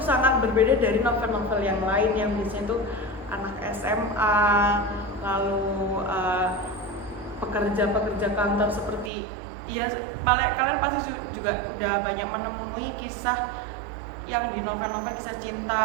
sangat berbeda dari novel-novel yang lain yang biasanya tuh anak SMA, lalu pekerja kantor seperti ya kalian pasti juga udah banyak menemui kisah yang di novel-novel kisah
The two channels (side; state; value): left; drops out; at 9.1 s